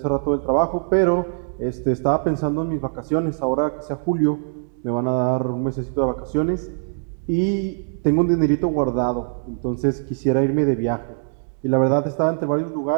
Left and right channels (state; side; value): silent; left; 63 dB below the other